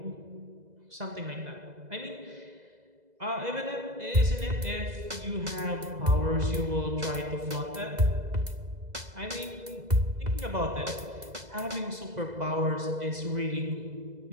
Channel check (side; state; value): left; late; 2.0 ms